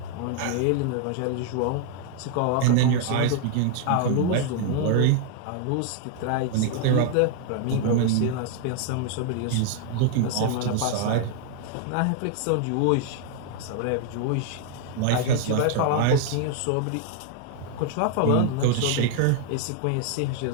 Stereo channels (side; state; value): both; different; correlation 0.00